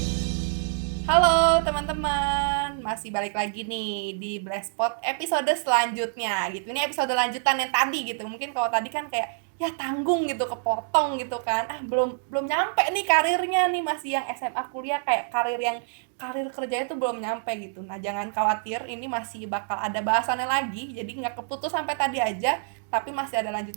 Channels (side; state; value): left; silent; digital silence